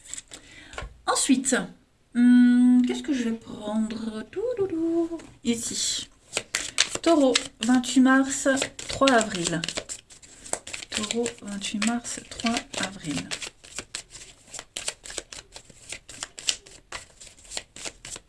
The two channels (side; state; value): both; identical; correlation 1.00